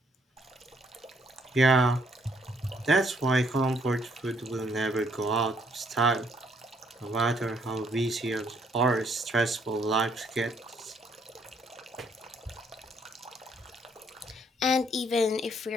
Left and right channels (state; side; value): normal; both; correlation 0.68